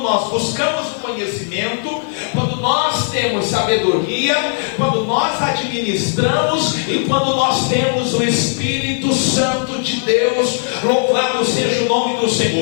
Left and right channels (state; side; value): silent; right; digital silence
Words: nós buscamos o conhecimento, quando nós temos sabedoria, quando nós administramos e quando nós temos o Espírito Santo de Deus. Louvado seja o nome do